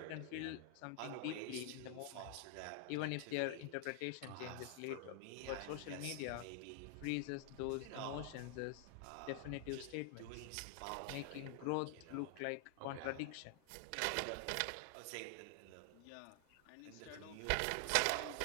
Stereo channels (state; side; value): different; both; correlation 0.00